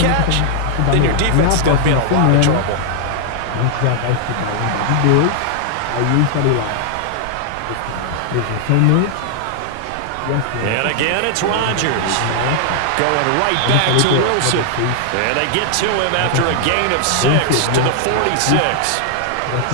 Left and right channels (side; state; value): both; different; correlation 0.00